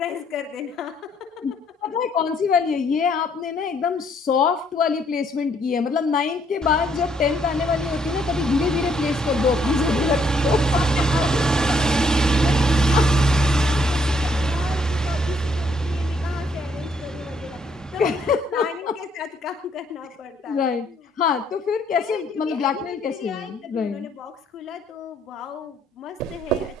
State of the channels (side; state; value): both; normal; correlation 0.69